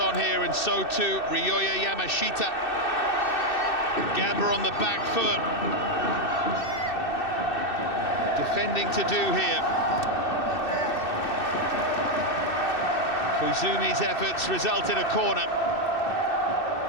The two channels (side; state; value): right; late; 2.6 ms